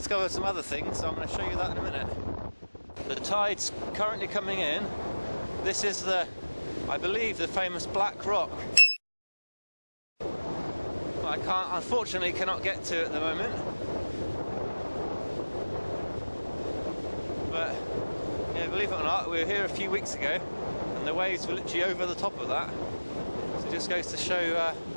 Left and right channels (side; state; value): both; inverted; correlation -1.00